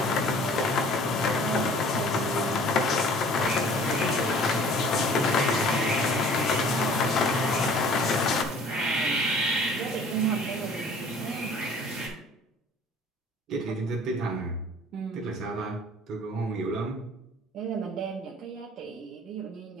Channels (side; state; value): both; normal; correlation 0.51